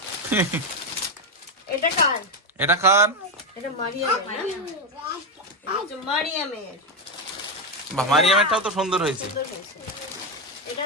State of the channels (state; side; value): normal; both; correlation 0.08